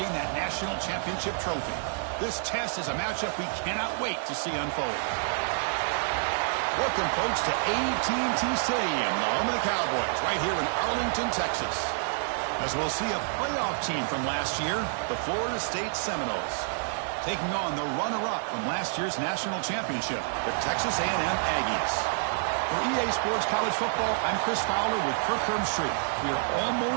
that national championship trophy. This test is a matchup we cannot wait to see unfold. Welcome, folks, to AT&T Stadium, the home of the Cowboys, right here in Arlington, Texas. As we'll see a playoff team from last year, the Florida State Seminoles, taking on the runner-up from last year's national championship, the Texas A&M Aggies. For EA Sports College Football, I'm Chris Fowler with Kirk Herbstreit. We are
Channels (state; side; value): silent; left; digital silence